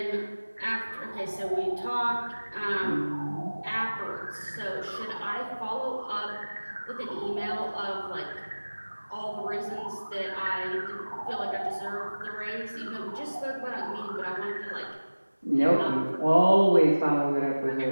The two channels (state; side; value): inverted; both; correlation -1.00